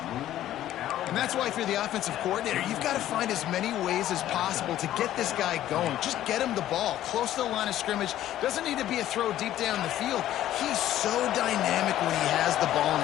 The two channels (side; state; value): right; quieter; 12.9 dB